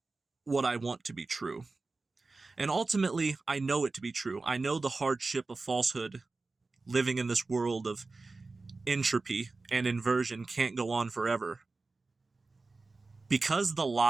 what I want to be true. And ultimately, I know it to be true. I know the hardship of falsehood, living in this world of entropy and inversion, can't go on forever. Because the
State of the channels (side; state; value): left; quieter; 3.7 dB